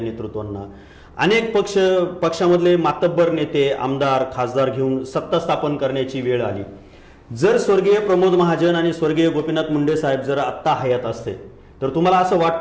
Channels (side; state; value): both; identical; correlation 1.00